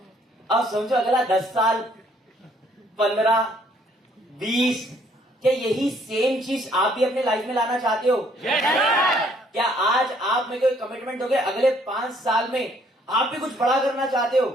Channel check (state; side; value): normal; both; correlation 0.64